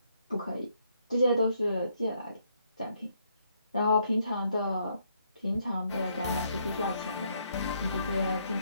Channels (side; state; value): both; inverted; correlation -0.72